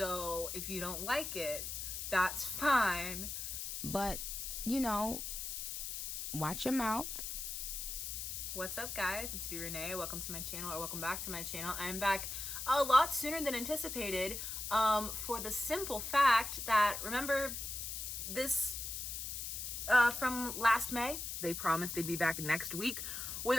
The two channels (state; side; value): noise; left; hiss, 5 dB below the sound